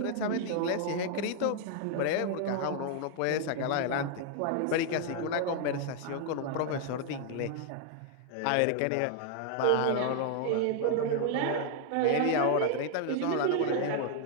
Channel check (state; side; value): different; both; correlation 0.00